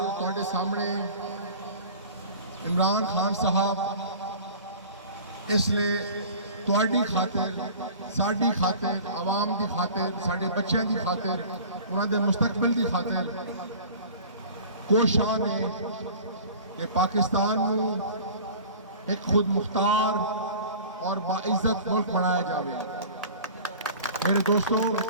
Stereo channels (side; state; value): both; inverted; correlation -0.42